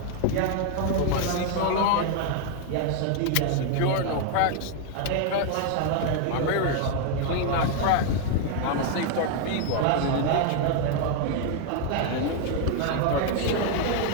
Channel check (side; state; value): both; different; correlation 0.00